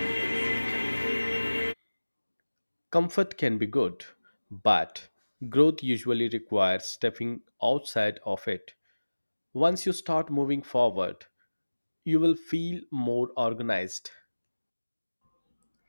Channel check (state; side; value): inverted; both; correlation -1.00